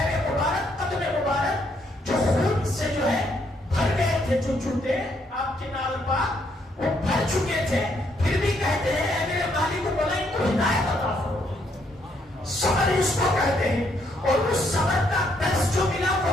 مبارک، قدم مبارک جو خون سے جو ہے بھر گئے تھے، جو جوتے آپ کے نال پاک وہ بھر چکے تھے، پھر بھی کہتے ہیں اے میرے مالک کو بولا ان کو ہدایت عطا فرما۔ صبر اس کو کہتے ہیں، اور اس صبر کا درس جو ملا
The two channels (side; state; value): both; normal; correlation 0.72